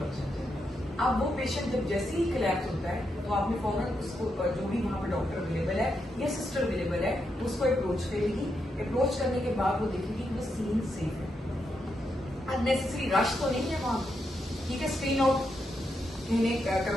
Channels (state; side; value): normal; both; correlation 0.83